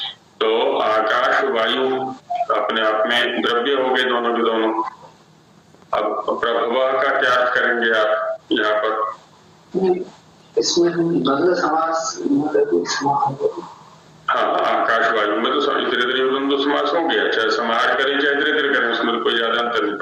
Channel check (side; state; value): both; identical; correlation 1.00